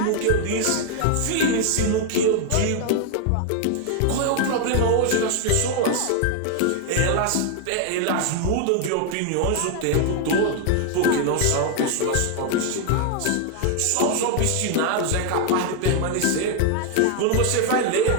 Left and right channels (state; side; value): different; both; correlation 0.00